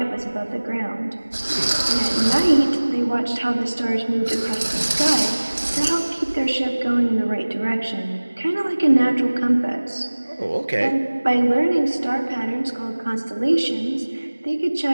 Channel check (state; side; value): inverted; both; correlation -1.00